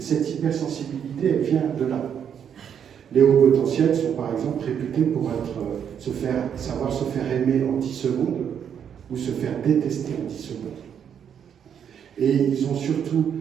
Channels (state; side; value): quieter; left; 8.3 dB